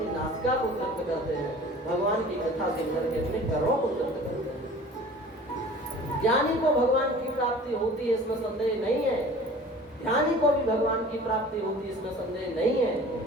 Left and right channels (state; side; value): normal; both; correlation 0.44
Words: नासिका को तृप्त करते हैं। भगवान की कथा सुन करके अपने कर्मों को तृप्त करते हैं। ज्ञानी को भगवान की प्राप्ति होती है, इसमें संदेह नहीं है। ध्यानी को भी भगवान की प्राप्ति होती, इसमें संदेह नहीं है।